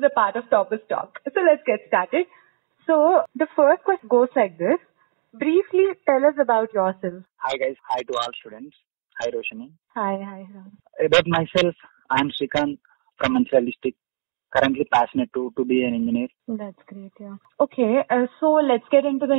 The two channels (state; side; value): silent; left; digital silence